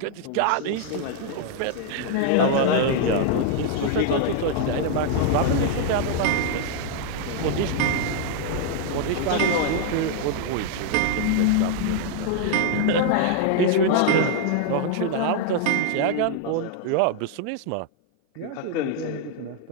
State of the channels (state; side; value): different; both; correlation 0.00